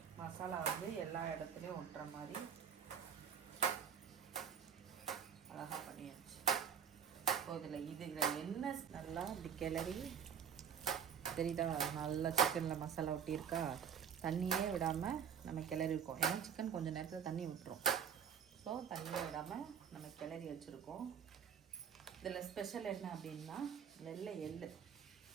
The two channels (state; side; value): quieter; left; 7.6 dB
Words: மசாலா வந்து எல்லா இடத்துலையும் ஒட்டுற மாதிரி அழகாக பண்ணியாச்சு. இப்போ இதில் என்ன நல்லா இப்படி கிளறி தெரியுதா? நல்லா சிக்கனில் மசாலா ஒட்டியிருக்கா. தண்ணியே விடாமல் நம்ம கிளறி இருக்கோம். ஏன்னா சிக்கன் கொஞ்சம் நேரத்தில் தண்ணி விட்டுரும். ஸோ தண்ணியே விடாமல் நம்ம கிளறி வச்சுருக்கோம். இதில் ஸ்பெஷல் என்ன அப்படின்னா வெள்ளை எள்ளு